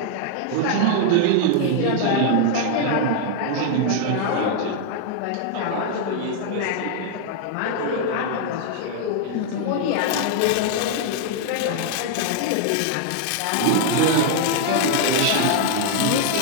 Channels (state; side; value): different; both; correlation 0.00